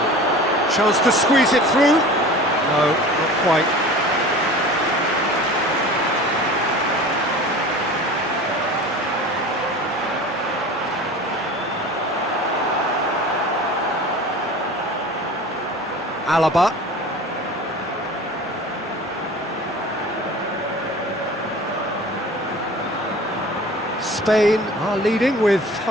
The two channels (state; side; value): normal; both; correlation 0.39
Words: Chance to squeeze it through. No, not quite. Alaba. Spain are leading with